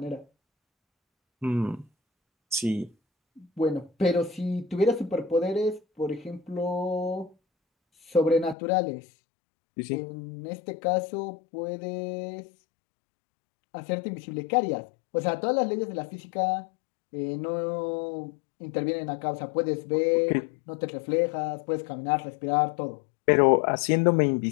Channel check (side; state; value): right; drops out; at 8.6 s